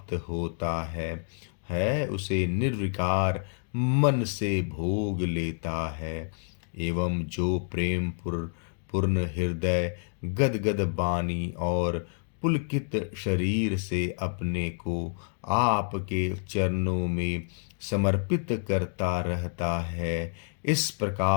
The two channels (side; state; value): right; silent; digital silence